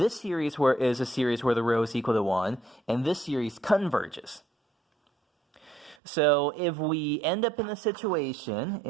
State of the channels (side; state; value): left; drops out; at 6.0 s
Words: series is a series where the rho is equal to 1, and this series converges. So if we end up in a situation